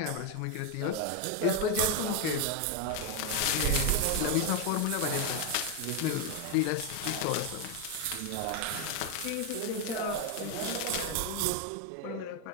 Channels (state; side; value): different; both; correlation 0.02